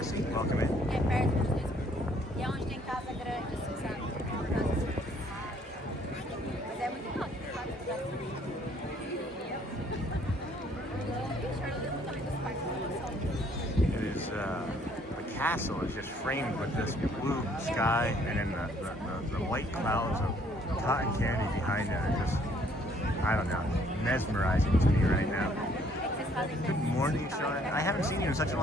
Welcome in. It is, the castle is just framed with this blue sky and then the white clouds of cotton candy behind it are just, I don't know, mesmerizing to me right now. Good morning, Sean. I haven't seen you in such a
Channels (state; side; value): normal; both; correlation 0.63